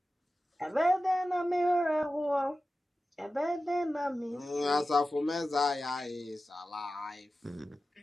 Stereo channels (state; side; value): normal; both; correlation 0.94